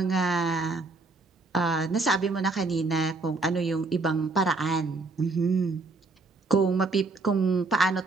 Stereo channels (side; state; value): left; quieter; 3.6 dB